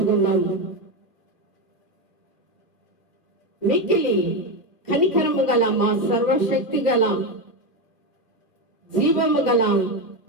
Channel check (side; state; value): right; late; 2.2 ms